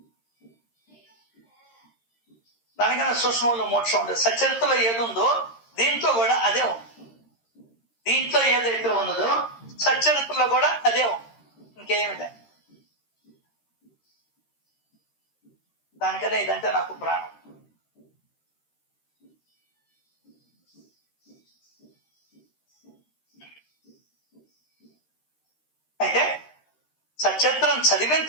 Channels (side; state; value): right; late; 13 ms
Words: దానికన్నా సూక్ష్మంలో మోక్షం ఉండదు. సచరిత్రలో ఏది ఉందో దీంట్లో కూడా అదే ఉంది. దీంట్లో ఏదైతే ఉన్నదో సచరిత్రలో కూడా అదే ఉంది. ఇంకేమిదే. దానికనే ఇదంటే నాకు ప్రాణం. అయితే సచరిత్రం చదివిన